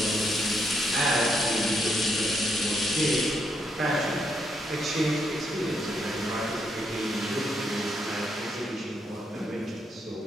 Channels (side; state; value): both; normal; correlation 0.77